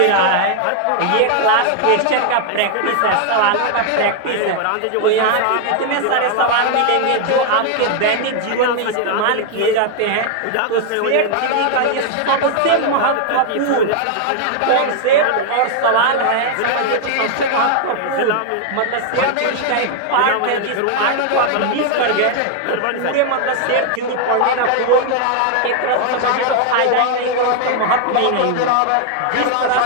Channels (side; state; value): both; different; correlation 0.00